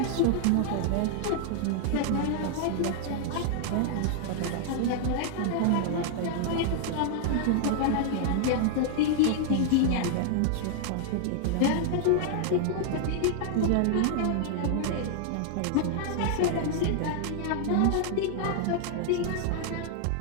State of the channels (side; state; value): both; different; correlation -0.01